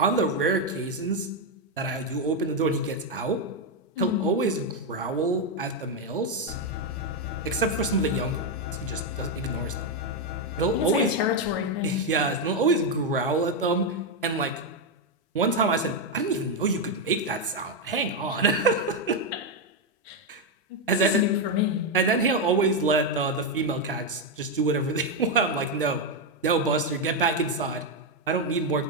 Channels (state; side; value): normal; both; correlation 0.04